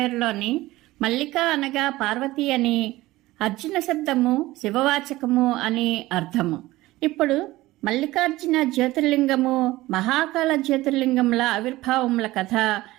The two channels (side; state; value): left; quieter; 18.0 dB